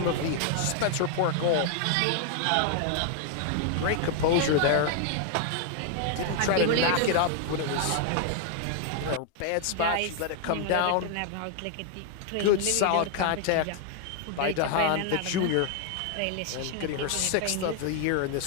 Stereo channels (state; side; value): different; both; correlation 0.00